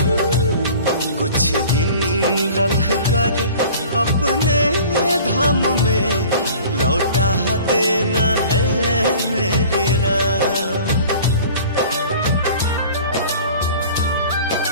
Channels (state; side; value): inverted; both; correlation -0.45